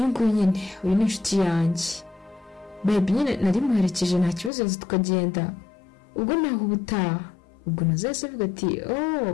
nguyu nyine, uyu ni inshuti yanjye. Babe nyine nari muherekeje, nta kibazo yaza tukagenda, ubwo naho ubutaha. Ubwo Nazo yahise avuga ati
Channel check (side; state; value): right; drops out; at 4.5 s